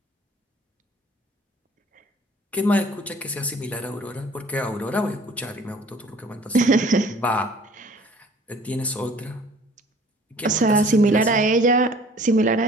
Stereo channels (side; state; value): both; normal; correlation 0.51